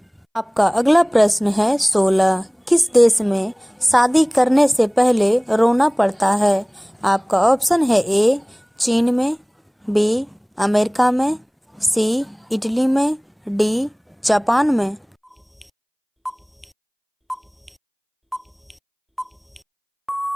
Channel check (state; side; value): identical; both; correlation 1.00